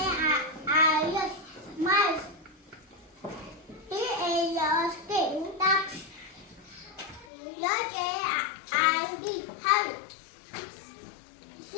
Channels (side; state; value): right; drops out; at 7.2 s